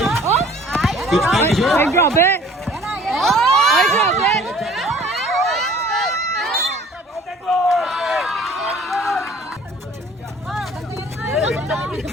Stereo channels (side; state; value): both; normal; correlation 0.52